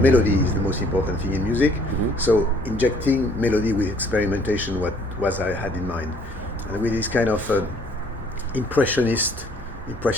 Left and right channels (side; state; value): both; normal; correlation 0.60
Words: is the most important thing in music. So injecting melody with experimentation, what was I had in mind, and with this kind of impressionist